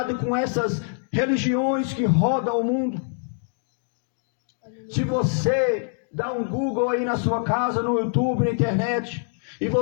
com essas religiões que rodam o mundo. Se você dá um Google aí na sua casa, no YouTube, na internet, e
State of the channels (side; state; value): right; silent; 62 dB below the other